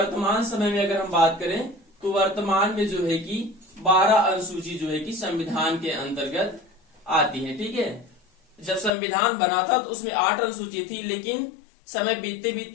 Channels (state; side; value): drops out; right; at 8.9 s